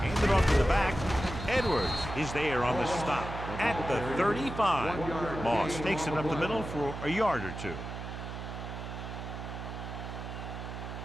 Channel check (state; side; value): noise; right; hum, 8 dB below the sound